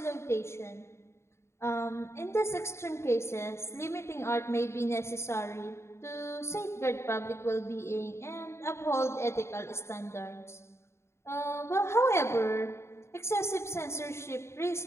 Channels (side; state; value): right; late; 0.13 ms